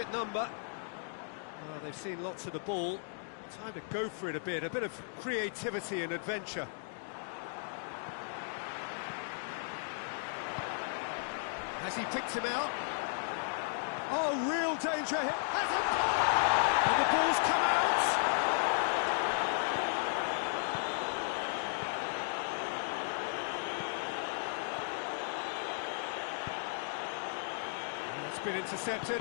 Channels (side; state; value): right; silent; digital silence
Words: number. Well, they've seen lots of the ball. Time to go for it a bit of creativity and adventure. Has he picked him out? Oh, real danger here. Has it? And the ball's come out. And it's been intercepted,